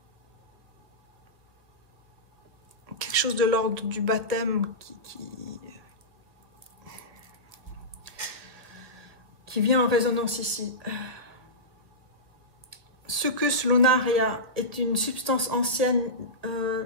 Quelque chose de l'ordre du baptême qui vient en résonance ici. Succus lunaria est une substance ancienne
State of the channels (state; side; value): late; left; 1.7 ms